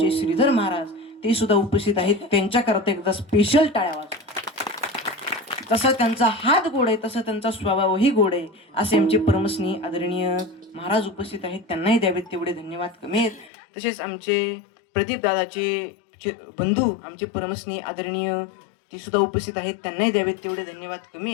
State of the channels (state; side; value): drops out; right; at 13.5 s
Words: श्रीधर महाराज ते सुद्धा उपस्थित आहेत. त्यांच्याकरता एकदा स्पेशल टाळ्या वाजवा. तसा त्यांचा हात गोड आहे, तसा त्यांचा स्वभावही गोड आहे, असे आमचे परमस्नेही आदरणीय महाराज उपस्थित आहेत. त्यांनाही द्यावेत तेवढे धन्यवाद कमी आहेत. तसेच आमचे प्रदीप दादाचे बंधू आमचे परमस्नेही आदरणीय ते सुद्धा उपस्थित आहेत. त्यांनाही द्यावेत तेवढे धन्यवाद कमी